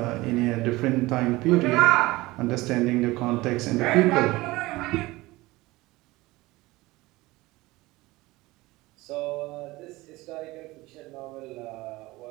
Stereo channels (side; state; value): left; quieter; 20.1 dB